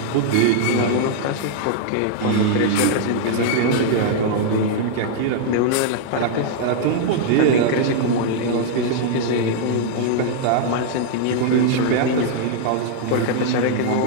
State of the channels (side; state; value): both; different; correlation -0.01